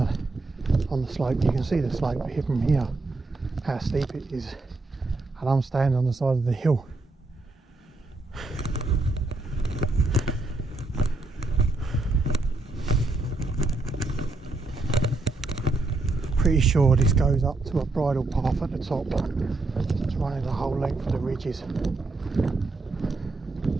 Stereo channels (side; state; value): left; quieter; 3.2 dB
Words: slope. You can see the slope here from here, how steep it is, and I'm standing on the side of the hill. Pretty sure this goes up to a bridle path at the top. It's running the whole length of the ridges.